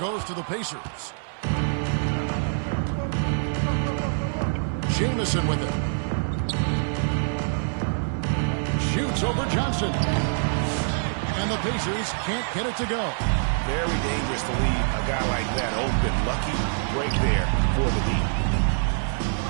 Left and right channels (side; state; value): left; silent; digital silence